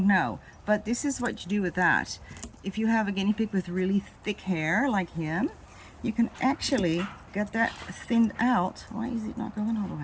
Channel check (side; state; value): both; identical; correlation 1.00